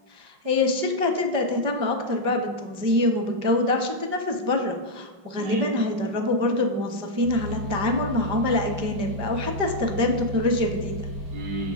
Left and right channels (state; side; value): late; left; 5.4 ms